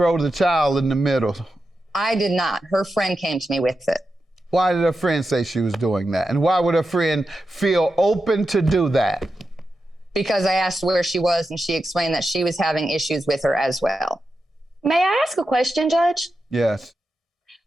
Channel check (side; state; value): both; normal; correlation 0.89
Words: the child in the middle? I did not. Her friend came to me with it. Why did her friend say she was doing that? And why would her friend feel open to do that? Because I asked where she was, and she explained that she was having issues with her as well. May I ask a question, Judge? Yes.